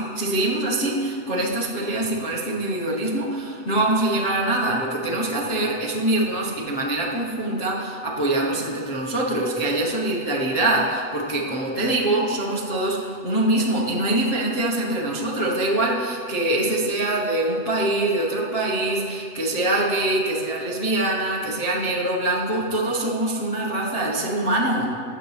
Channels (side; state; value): right; late; 7.9 ms